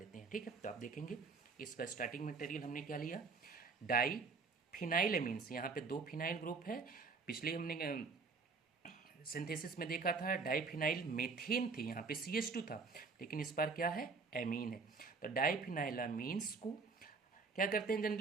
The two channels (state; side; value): quieter; left; 4.5 dB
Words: हैं, ठीक है। तो आप देखेंगे इसका स्टार्टिंग मटेरियल हमने क्या लिया, डाई फिनाइलएमीन्स। यहाँ पे दो फिनाइल ग्रुप है। पिछले हमने सिंथेसिस में देखा था डाइफिनाइल मेथेन थी, यहाँ पे CH2 था, लेकिन इस बार क्या है, एमीन है। तो डाइफिनाइलामीन्स को क्या करते हैं,